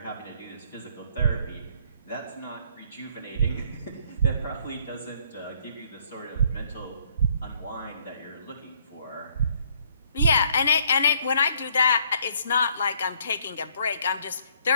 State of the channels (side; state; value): both; inverted; correlation -0.65